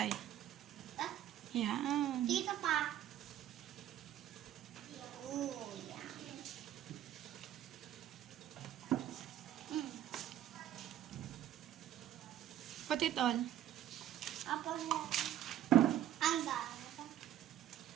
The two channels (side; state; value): left; quieter; 11.7 dB